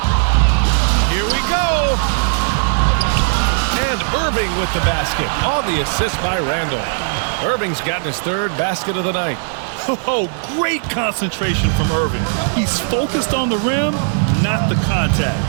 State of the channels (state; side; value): silent; left; digital silence